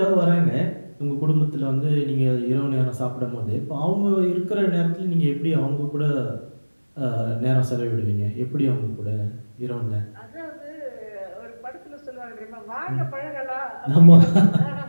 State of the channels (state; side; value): inverted; both; correlation -1.00